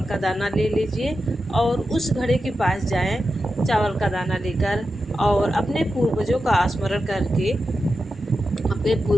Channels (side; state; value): both; normal; correlation 0.90